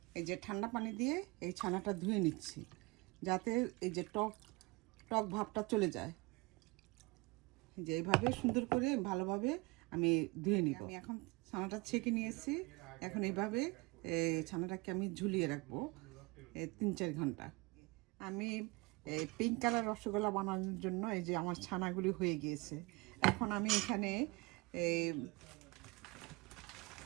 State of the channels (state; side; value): quieter; left; 25.5 dB